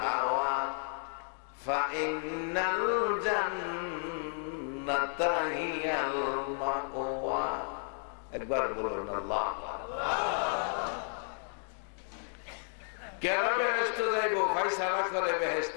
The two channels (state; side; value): silent; right; 56 dB below the other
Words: হাওয়া ফাইন্নাল জান্নাতা হিয়াল মাওয়া। একবার বলুন আল্লাহ। কেন বেহেশত যাইব? ফায়সালা করে